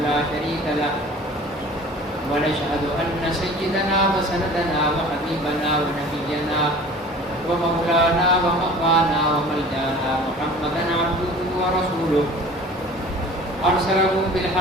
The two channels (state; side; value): normal; both; correlation 0.44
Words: لا شريك له ونشهد أن سيدنا وسندنا وحبيبنا ونبينا ومولانا ومقوانا وملجانا محمدا عبده ورسوله أرسله